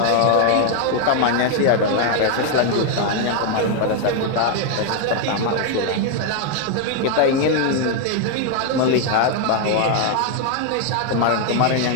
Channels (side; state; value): both; different; correlation 0.01